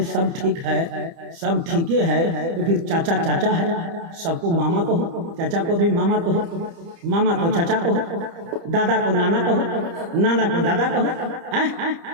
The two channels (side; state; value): left; late; 30 ms